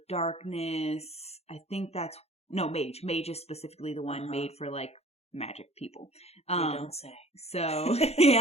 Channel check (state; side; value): late; right; 0.30 ms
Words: Darkness. I think that's Mage. Mage is specifically the one made for like magic people. You don't say. So